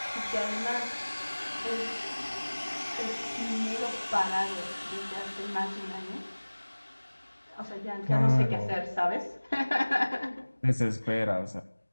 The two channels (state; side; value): inverted; both; correlation -1.00